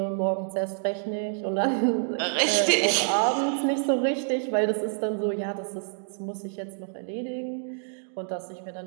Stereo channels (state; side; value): silent; left; digital silence